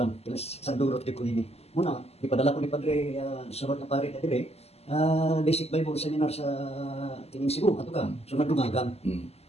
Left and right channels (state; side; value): late; right; 0.30 ms